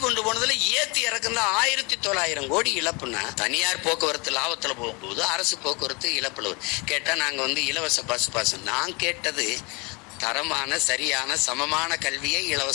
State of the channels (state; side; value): quieter; right; 28.9 dB